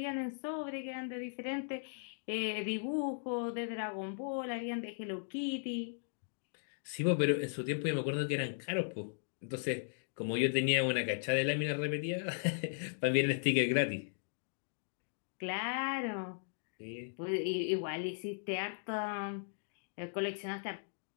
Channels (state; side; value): silent; right; digital silence